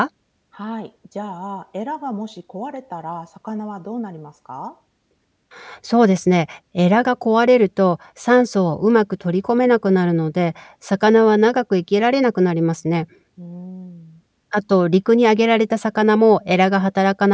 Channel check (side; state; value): both; identical; correlation 1.00